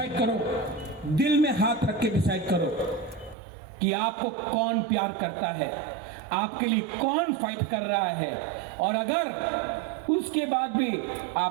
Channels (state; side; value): drops out; left; at 3.4 s